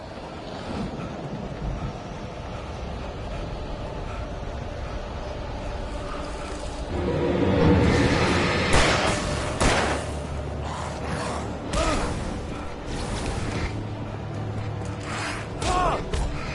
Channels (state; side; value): identical; both; correlation 1.00